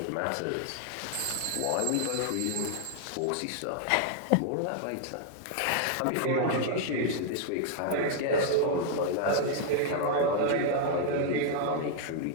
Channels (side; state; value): both; different; correlation 0.00